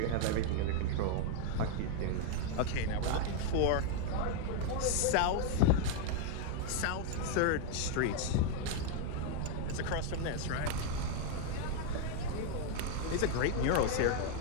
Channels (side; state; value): both; different; correlation 0.00